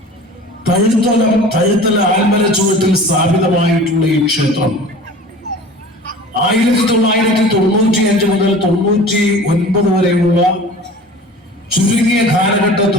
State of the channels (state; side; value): normal; both; correlation 0.41